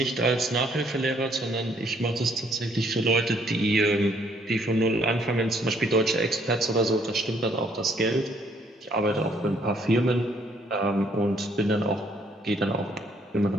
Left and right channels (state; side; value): normal; both; correlation 0.66